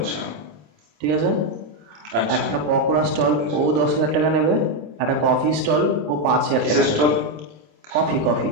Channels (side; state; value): left; late; 27 ms